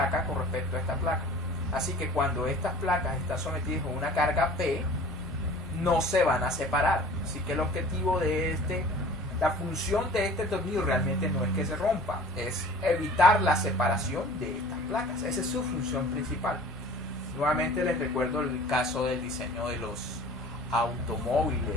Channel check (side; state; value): both; normal; correlation 0.45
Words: con respecto a esta placa. Así que cuando estas placas están sometidas a una carga P, no se van a separar. Así que el objetivo de la función de este tornillo realmente no es que se rompa, es evitar la separación de estas placas. Esa es su función principal. Nuevamente les recuerdo el caso del diseño de los